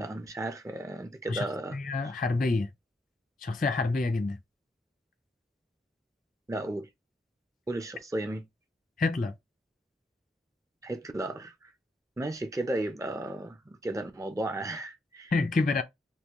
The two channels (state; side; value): normal; both; correlation 0.78